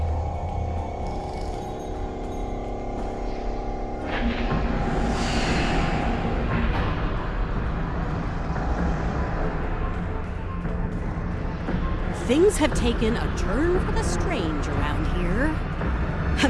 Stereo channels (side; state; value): both; identical; correlation 1.00